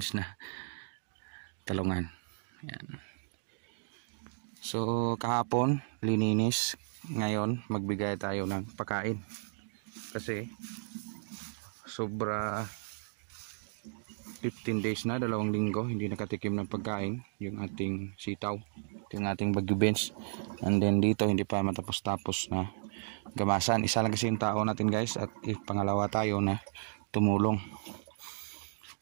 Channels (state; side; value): silent; left; digital silence